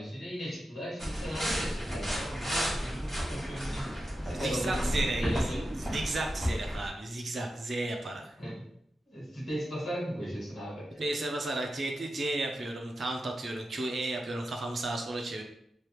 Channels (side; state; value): both; normal; correlation 0.90